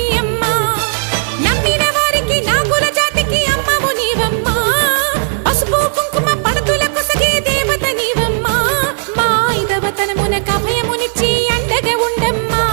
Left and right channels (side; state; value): left; silent; digital silence